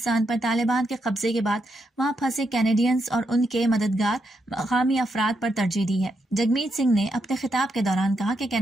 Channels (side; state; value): both; normal; correlation 0.81